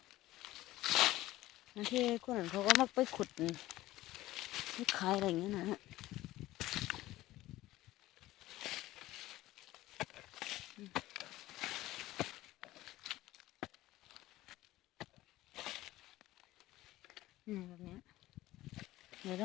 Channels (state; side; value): quieter; right; 16.5 dB